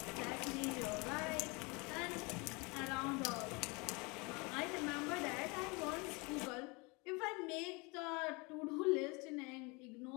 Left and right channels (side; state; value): right; quieter; 28.2 dB